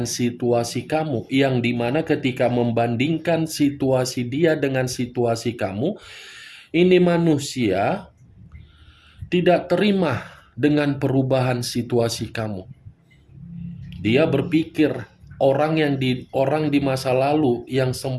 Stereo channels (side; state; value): both; identical; correlation 1.00